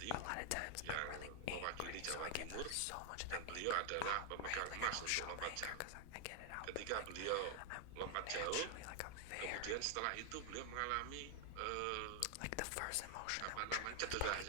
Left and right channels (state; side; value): different; both; correlation 0.00